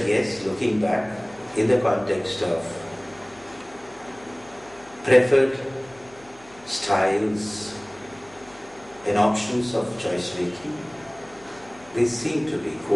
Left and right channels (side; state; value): left; noise; hum, 25 dB below the sound